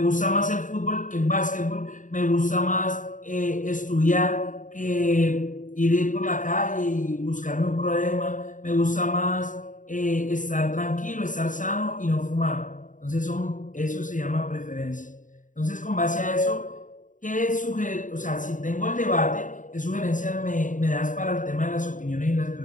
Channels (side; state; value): right; late; 0.38 ms